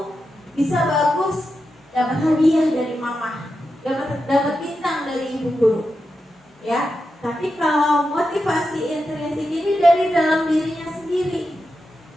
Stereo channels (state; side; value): normal; both; correlation 0.88